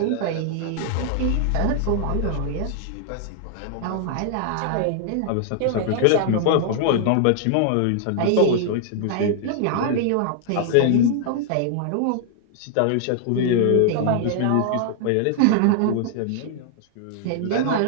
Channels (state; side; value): different; both; correlation 0.00